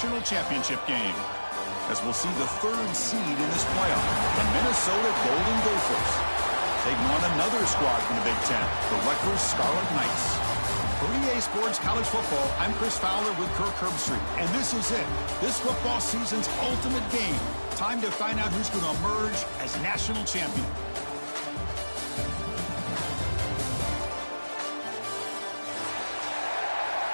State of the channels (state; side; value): inverted; both; correlation -1.00